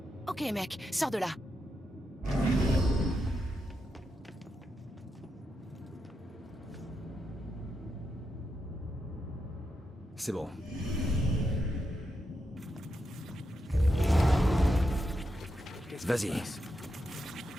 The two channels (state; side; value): normal; both; correlation 0.85